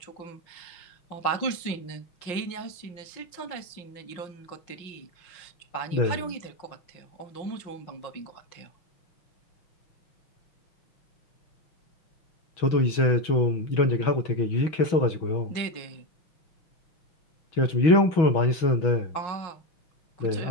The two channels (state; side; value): late; right; 5.6 ms